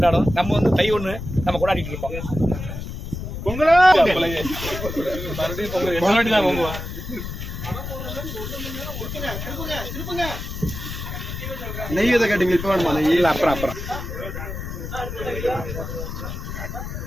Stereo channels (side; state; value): left; noise; rumble, 7 dB below the sound